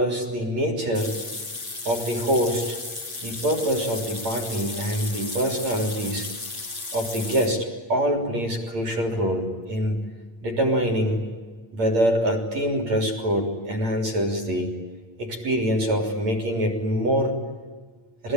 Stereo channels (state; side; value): late; left; 8.7 ms